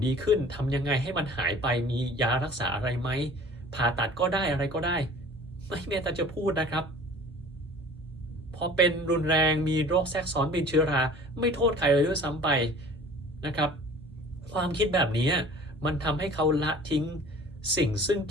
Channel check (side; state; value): both; normal; correlation 0.46